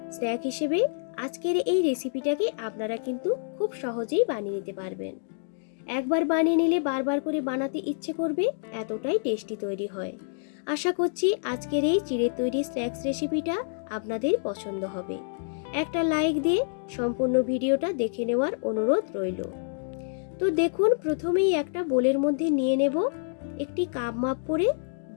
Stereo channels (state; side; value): silent; right; digital silence